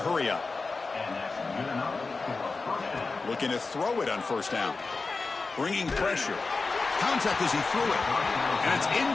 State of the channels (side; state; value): right; quieter; 4.0 dB